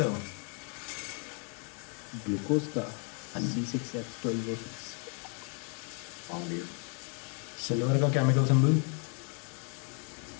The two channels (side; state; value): right; quieter; 39.5 dB